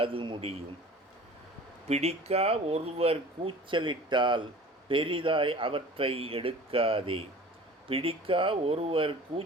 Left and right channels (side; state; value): both; normal; correlation 0.42